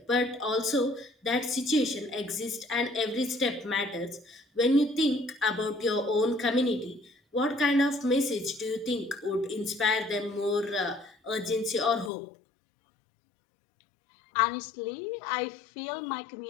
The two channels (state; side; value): drops out; right; at 12.1 s